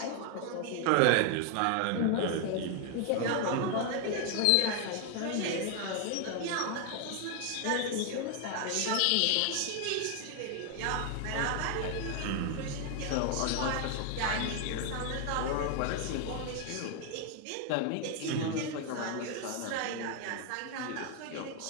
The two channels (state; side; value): different; both; correlation 0.01